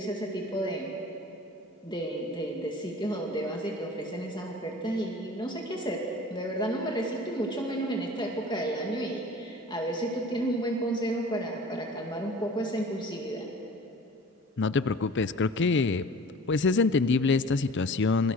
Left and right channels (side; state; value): both; normal; correlation 0.43